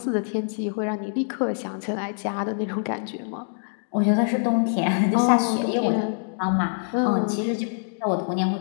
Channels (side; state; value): right; silent; digital silence